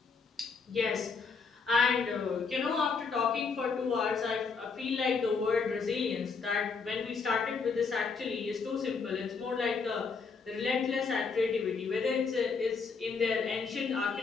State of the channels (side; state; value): right; quieter; 5.0 dB